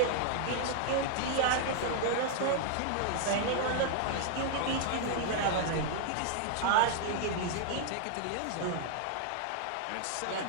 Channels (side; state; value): both; different; correlation 0.00